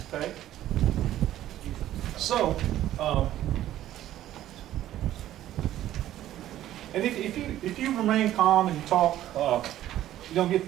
Okay? So, and if you remain calm and you talk, you don't get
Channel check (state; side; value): quieter; left; 13.1 dB